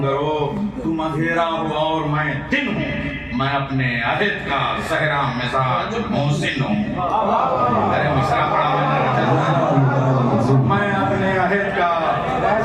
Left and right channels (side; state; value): both; identical; correlation 1.00